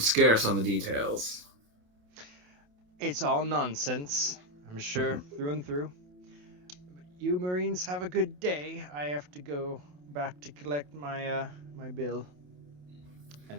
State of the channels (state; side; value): late; left; 28 ms